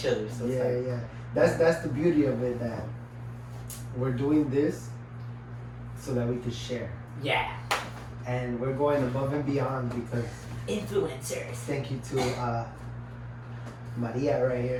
other. So it's Yeah, like, yeah. That's the beauty of it, that we're doing this so that we can share. yeah. And we're going above and beyond because Influencers. thank you to Maria right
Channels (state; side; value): identical; both; correlation 1.00